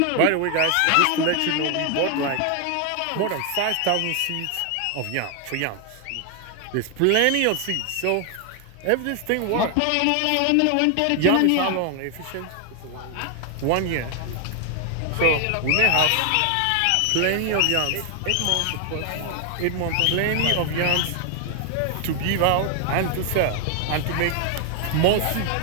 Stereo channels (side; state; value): both; different; correlation 0.00